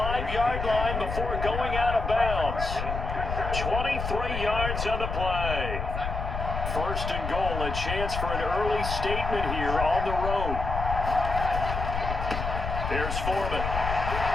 line before going out of bounds. 23 yards on the play. 1st and goal, a chance for an early statement here on the road. Here's Foreman.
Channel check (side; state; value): left; noise; rumble, 4 dB below the sound